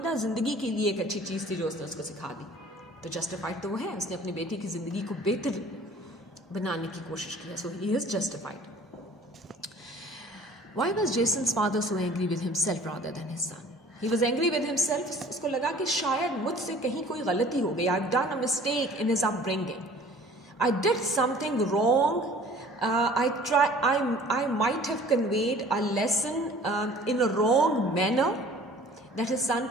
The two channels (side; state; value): both; normal; correlation 0.50